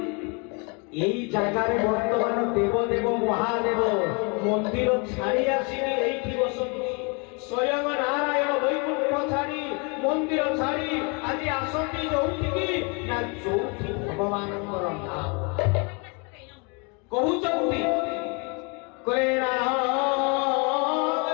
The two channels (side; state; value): right; quieter; 32.8 dB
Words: এই জায়গায় বর্তমান দেবদেব মহাদেব মন্দির ছাড়ি আসিনি এইটি বসନ୍ତି স্বয়ং নারায়ণ বৈকুণ্ঠ ছাড়ি মন্দির ছাড়ি আজ আসନ୍ତି ଯୋଉଠିକି ନା ଯୋଉଠି ଭଗବାନଙ୍କର ନାମ କହୁଛନ୍ତି କରେଣା